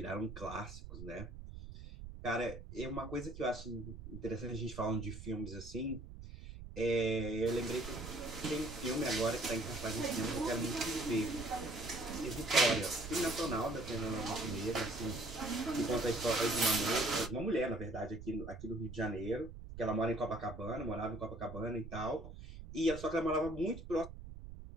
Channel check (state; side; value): noise; right; rumble, 12 dB below the sound